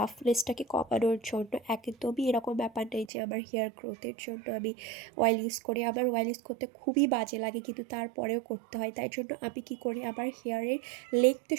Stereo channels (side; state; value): left; drops out; at 3.1 s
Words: কমানোর জন্য, একদমই এরকম ব্যাপার নেই যে আমার হেয়ার গ্রোথের জন্য আমি অয়েল ইউজ করি। আমার অয়েল ইউজ করতে খুবই বাজে লাগে, কিন্তু তারপরেও করতে হয়। তাই জন্য আমি কি করি, আমার হেয়ারের লেগতে